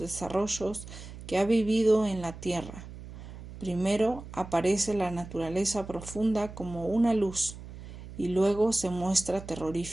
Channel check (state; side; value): noise; right; hum, 14 dB below the sound